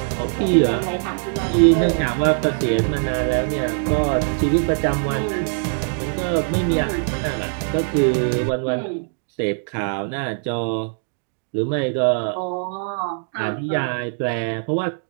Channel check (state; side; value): silent; left; 64 dB below the other